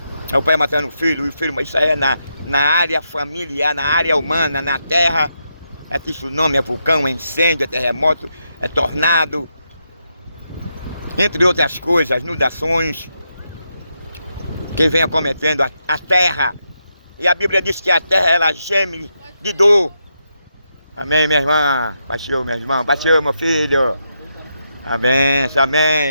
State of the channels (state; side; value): inverted; both; correlation -0.83